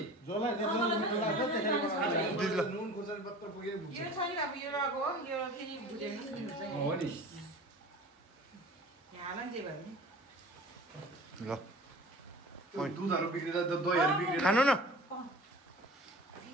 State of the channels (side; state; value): both; normal; correlation 0.41